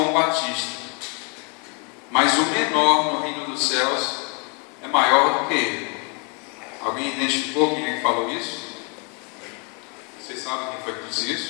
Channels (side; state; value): right; quieter; 35.0 dB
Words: Batista, mas o menor no reino dos céus é maior do que ele. Alguém identificou quem é que falou isso? Vocês sabem quem foi que disse